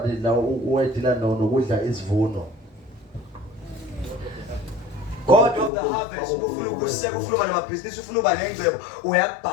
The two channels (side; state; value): right; drops out; at 5.7 s